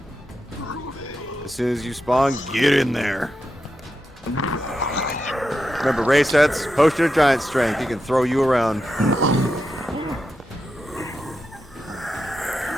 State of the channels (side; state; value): both; normal; correlation 0.88